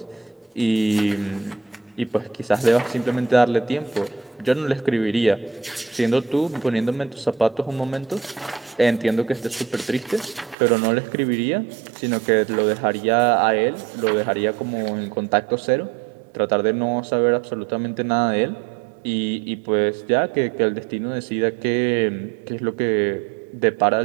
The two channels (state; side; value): drops out; left; at 10.6 s